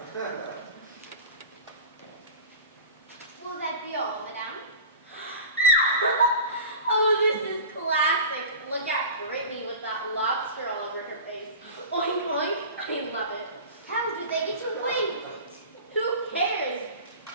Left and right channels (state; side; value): inverted; both; correlation -0.35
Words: Will that be all, madame? Oh, this is classic. Look at Brittany with that lobster all over her face. Oink, oink. I love it. How do they get away with it? Who cares?